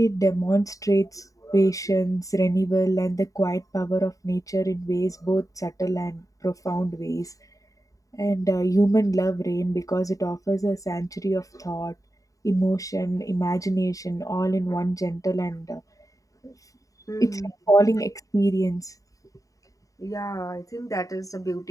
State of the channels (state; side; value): late; right; 0.16 ms